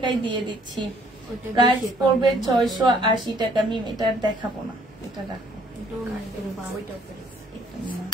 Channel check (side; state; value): both; normal; correlation 0.62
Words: দিয়ে দিচ্ছি, প্রাইস পড়বে 680 টাকা। মিম এটা দেখাবো না, এটা রাখো।